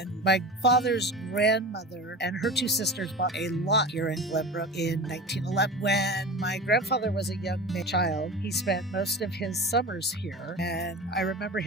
my father's grandmother and her 2 sisters bought a lot here in Glenbrook in 1911. When my grandfather was a young child, he spent most of his summers here, and I remember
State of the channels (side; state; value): both; normal; correlation 0.33